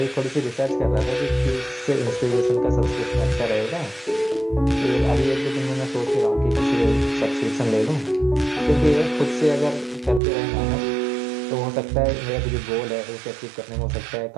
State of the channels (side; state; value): left; drops out; at 10.2 s